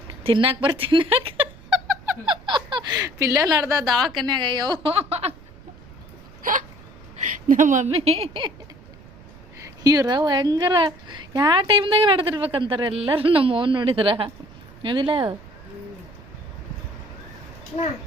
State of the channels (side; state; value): right; noise; rumble, 21 dB below the sound